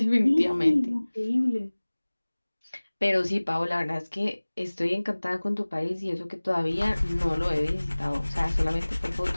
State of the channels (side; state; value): both; inverted; correlation -1.00